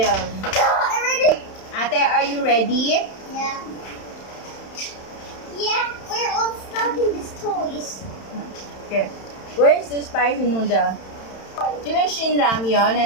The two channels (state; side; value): late; right; 31 ms